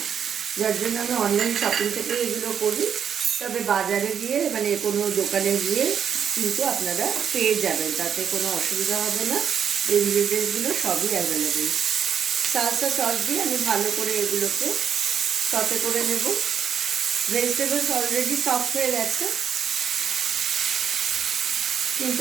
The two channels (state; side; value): quieter; left; 8.0 dB